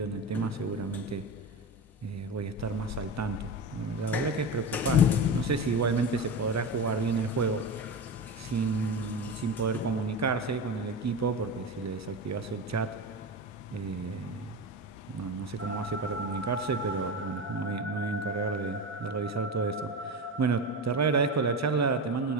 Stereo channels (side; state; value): both; normal; correlation 0.23